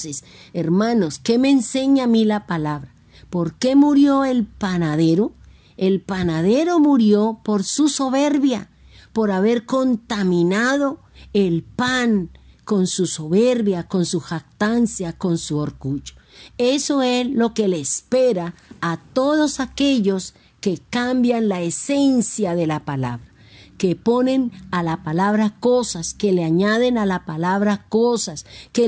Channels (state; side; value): identical; both; correlation 1.00